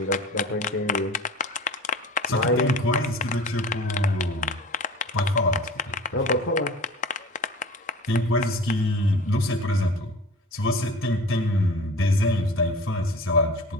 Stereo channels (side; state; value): both; normal; correlation 0.39